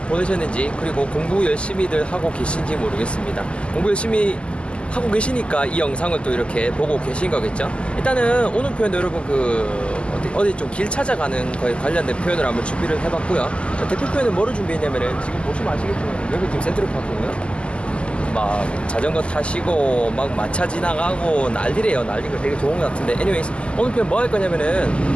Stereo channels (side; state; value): right; late; 0.053 ms